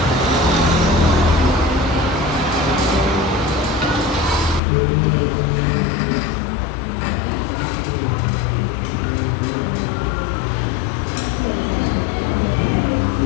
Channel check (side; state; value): right; drops out; at 4.6 s